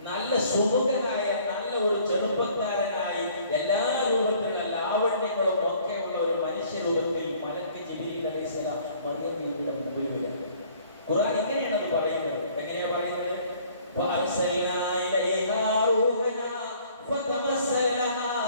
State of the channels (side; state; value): both; inverted; correlation -0.57